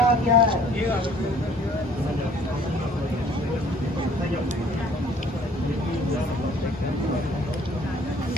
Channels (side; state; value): both; normal; correlation 0.55